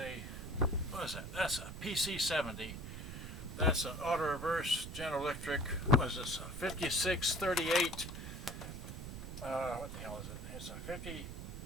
what is that? That's a PC-70. That's an auto reverse General Electric. What is this? A 5638. What the hell is it? It's a 50.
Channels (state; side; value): noise; right; rumble, 8 dB below the sound